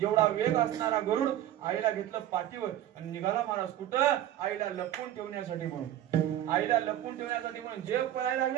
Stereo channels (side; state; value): left; quieter; 12.4 dB